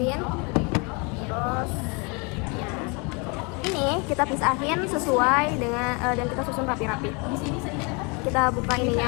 terus ini kita pisahin sesuai dengan dan kita susun rapi-rapi. Kita buka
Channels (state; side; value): quieter; right; 31.1 dB